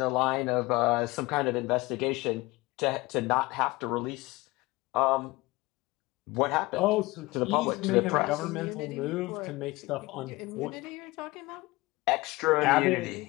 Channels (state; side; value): quieter; right; 21.7 dB